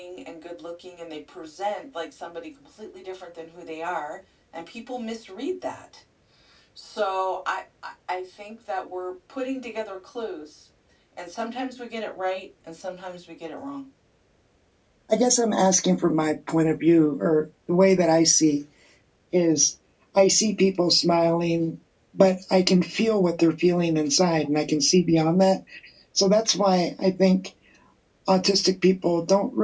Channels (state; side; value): identical; both; correlation 1.00